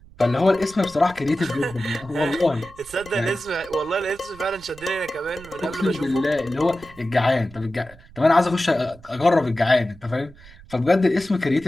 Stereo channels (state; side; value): noise; right; rumble, 22 dB below the sound